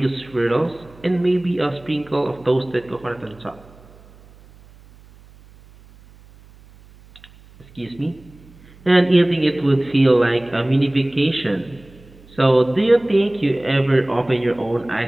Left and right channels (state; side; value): noise; right; hum, 25 dB below the sound